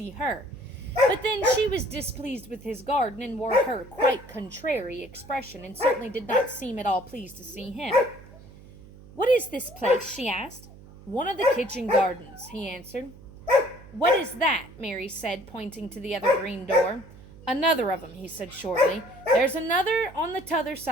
her. But then she was displeased with his garden, and wore her quite contrary expression, and certainly did not seem at all pleased to see him. "What is this place?" she asked. "One of the kitchen gardens," he answered. "What is that?" Mary said, pointing to the other green door. "Another of 'em," he said shortly. "There's another on the t'other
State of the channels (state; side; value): noise; right; hum, 20 dB below the sound